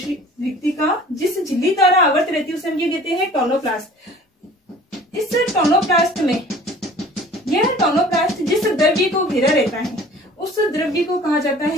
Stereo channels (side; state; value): both; normal; correlation 0.48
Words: रिक्तिका जिस झिल्ली द्वारा आवृत रहती है उसे हम क्या कहते हैं, टोनोप्लास्ट। इस टोनोप्लास्ट में, यह टोनोप्लास्ट जिस द्रव्य को घेरा रहता है उस द्रव्य को कहा जाता